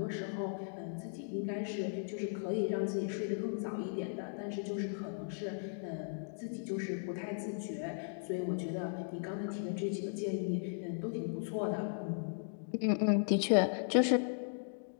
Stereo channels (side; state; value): right; silent; digital silence